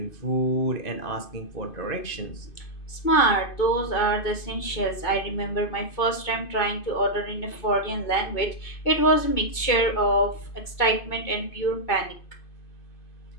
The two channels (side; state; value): right; late; 2.5 ms